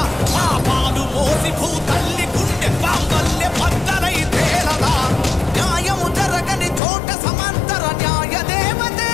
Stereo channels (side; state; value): right; drops out; at 6.8 s